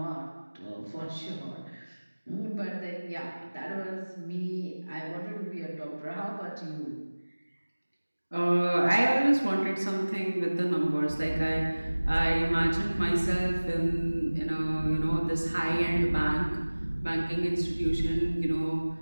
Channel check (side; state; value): both; inverted; correlation -1.00